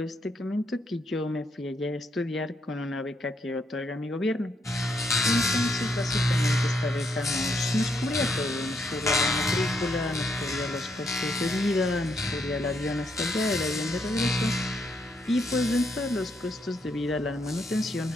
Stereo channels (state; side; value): normal; both; correlation 0.76